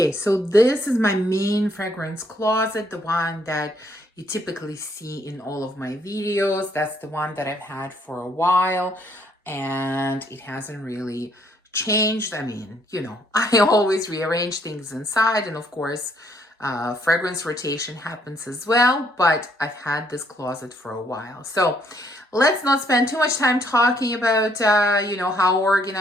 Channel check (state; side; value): normal; both; correlation 0.69